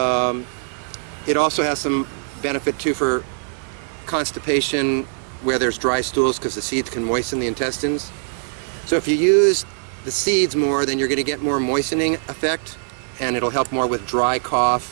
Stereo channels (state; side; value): silent; left; digital silence